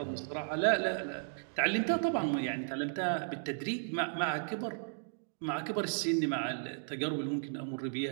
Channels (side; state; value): left; silent; digital silence